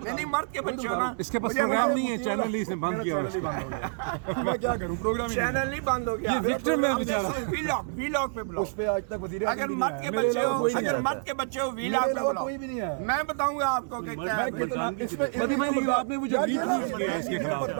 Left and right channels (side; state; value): left; silent; digital silence